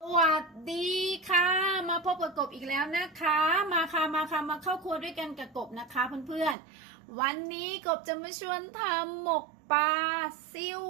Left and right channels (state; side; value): drops out; left; at 6.6 s